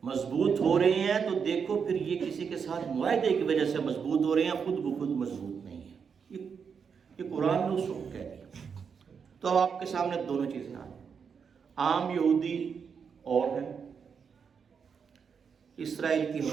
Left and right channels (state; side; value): quieter; left; 6.4 dB